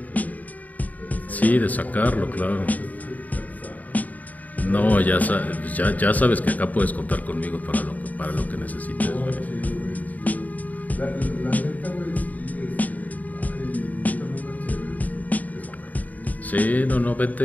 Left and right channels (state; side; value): late; right; 0.076 ms